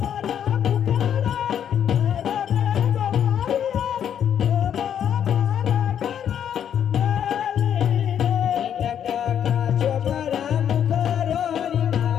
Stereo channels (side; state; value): right; quieter; 9.1 dB